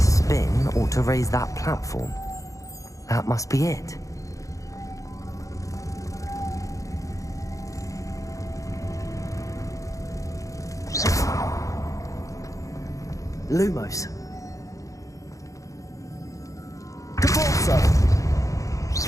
spin ought to raise that platform. That must be it. Lumos. Depulso.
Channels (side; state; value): right; late; 0.16 ms